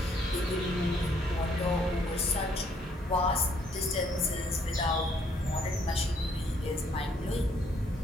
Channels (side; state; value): both; normal; correlation 0.67